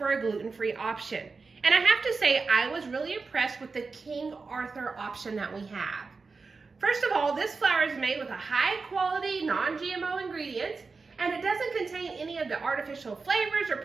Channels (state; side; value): quieter; left; 4.4 dB